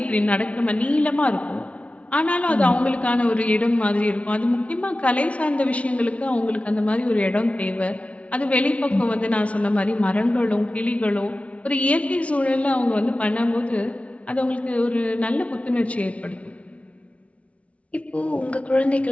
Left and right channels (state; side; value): late; right; 0.064 ms